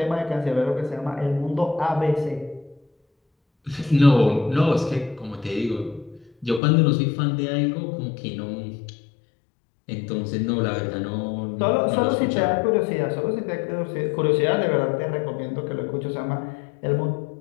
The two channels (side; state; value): right; drops out; at 6.6 s